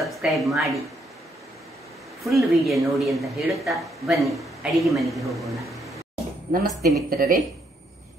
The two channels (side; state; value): both; normal; correlation 0.73